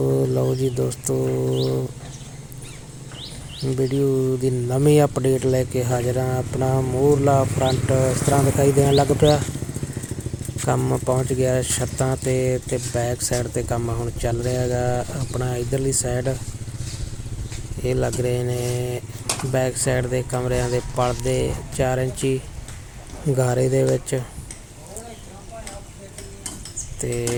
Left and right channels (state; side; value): identical; both; correlation 1.00